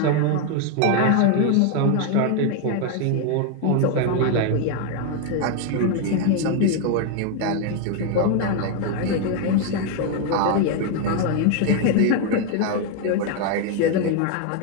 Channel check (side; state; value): both; different; correlation 0.01